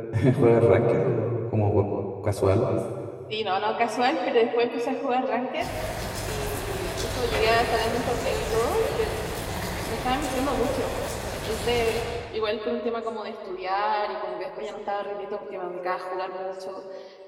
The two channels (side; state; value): both; identical; correlation 1.00